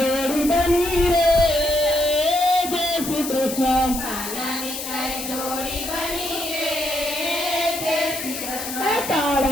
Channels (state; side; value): noise; left; hiss, 7 dB below the sound